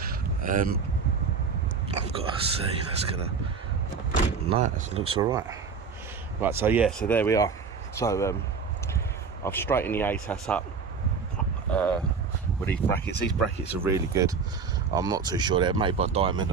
I've got to see. That's gonna. No, it looks all right. Right. So yeah. So there we are. So I've straightened the ATAS up with these brackets. These brackets are really good. I'm not too sure, they're made by Diamond.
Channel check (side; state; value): left; quieter; 5.4 dB